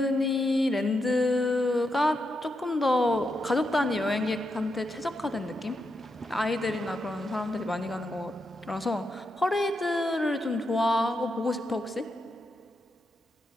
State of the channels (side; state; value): both; normal; correlation 0.84